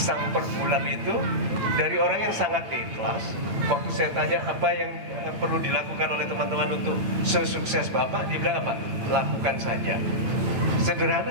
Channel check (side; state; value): left; late; 8.8 ms